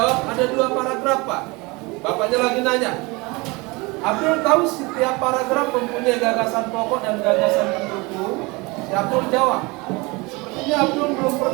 ada 2 paragraf, Pak. Bapaknya lagi nanya. Abdul tahu setiap paragraf mempunyai gagasan pokok dan gagasan pendukung. Si Abdul jawab, sepertinya Abdul belum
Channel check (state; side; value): quieter; left; 25.3 dB